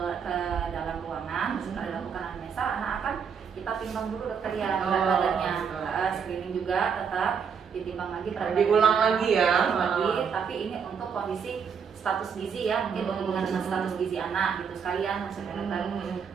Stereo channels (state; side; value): quieter; left; 6.7 dB